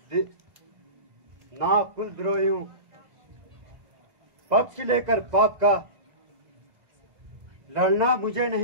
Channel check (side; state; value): left; late; 2.0 ms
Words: ना कुलद्रोही हूं। पक्ष लेकर पाप का लड़ना मुझे